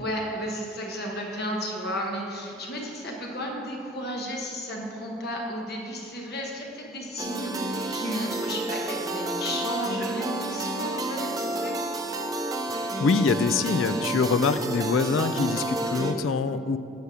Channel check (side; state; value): both; normal; correlation 0.47